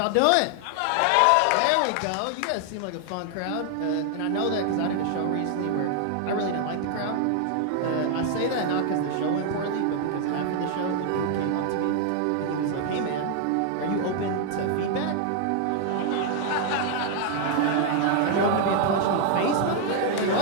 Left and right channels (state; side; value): different; both; correlation 0.00